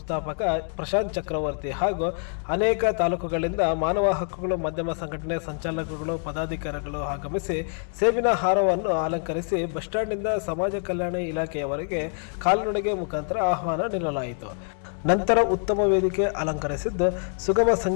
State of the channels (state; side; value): silent; right; 56 dB below the other